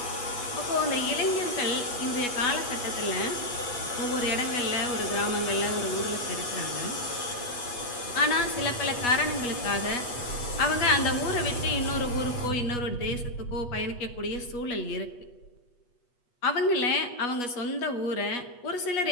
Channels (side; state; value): right; late; 8.2 ms